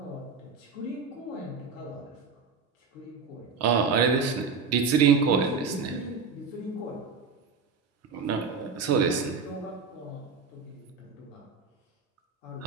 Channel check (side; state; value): left; quieter; 5.2 dB